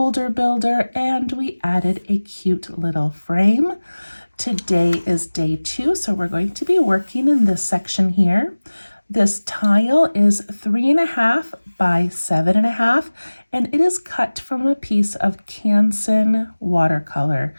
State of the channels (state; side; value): inverted; both; correlation -1.00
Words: builder, and we added a cute little frame. Today is day 2, so we're going to be working in this section here. This tile is 3.5 by 7.5, and it is cut from a piece of Canson watercolor,